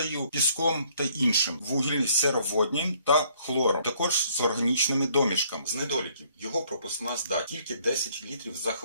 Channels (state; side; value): inverted; both; correlation -0.63